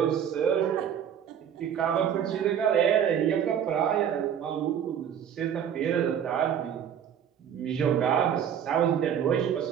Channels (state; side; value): quieter; left; 8.8 dB